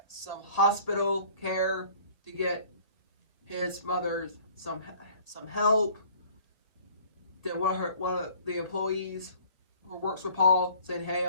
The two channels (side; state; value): right; late; 1.7 ms